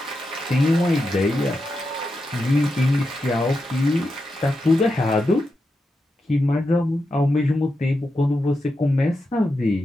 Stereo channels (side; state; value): both; normal; correlation 0.88